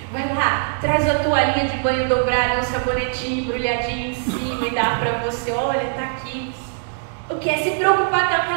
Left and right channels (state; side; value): silent; left; digital silence